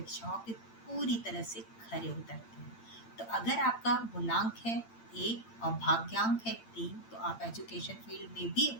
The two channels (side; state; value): right; late; 8.8 ms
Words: पे पूरी तरह से खरे उतरते हैं। तो अगर आपका मूलांक है 1 और भाग्यांक है 3, तो आप एजुकेशन फील्ड में भी